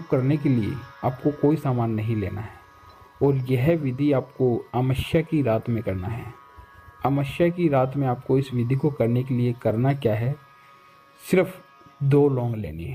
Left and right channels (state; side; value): identical; both; correlation 1.00